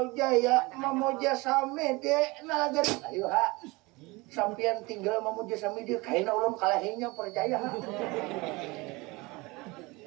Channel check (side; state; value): left; quieter; 23.9 dB